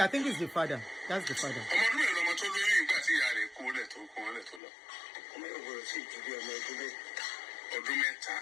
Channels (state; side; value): drops out; right; at 4.6 s